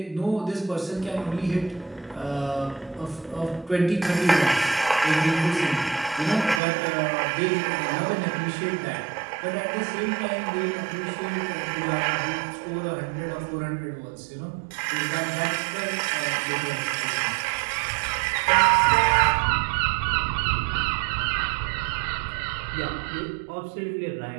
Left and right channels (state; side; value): drops out; left; at 6.6 s